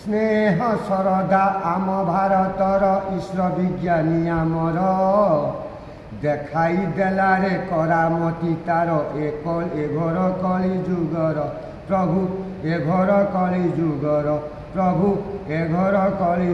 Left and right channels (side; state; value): both; identical; correlation 1.00